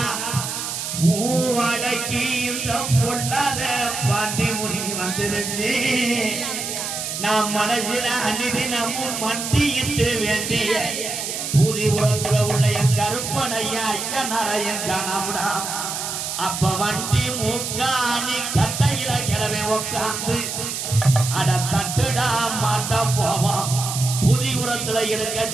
பூவடக்கி இந்த பொல்லாத பாண்டி முடி வந்துருச்சு நான் மனசில அன்னிதினமும் மண்டியிட்டு வேண்டிய பூதி உலகுல உள்ள என் கருப்பனையா ஐயனாரையன் காணாமடா அப்ப வண்டி மூக்காணி கட்டையில கிளவே உக்காந்து அட தட்டுடா மாட்டா போவான் புதி உரத்துல இருக்க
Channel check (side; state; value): right; noise; hiss, 4 dB below the sound